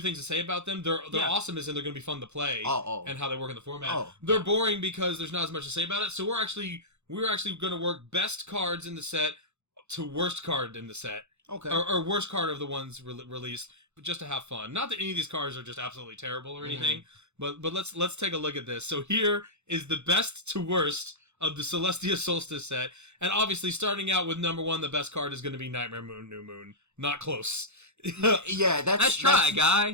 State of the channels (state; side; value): late; left; 0.82 ms